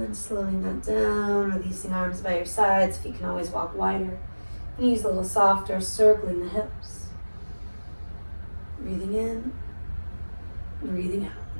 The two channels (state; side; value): inverted; both; correlation -1.00